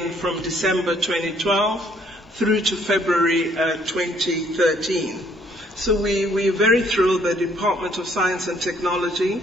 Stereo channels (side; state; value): both; normal; correlation 0.64